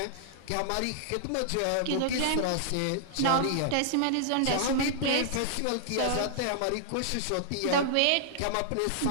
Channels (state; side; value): different; both; correlation -0.01